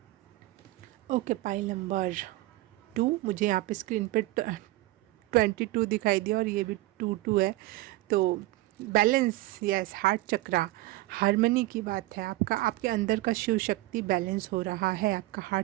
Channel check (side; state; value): left; quieter; 18.5 dB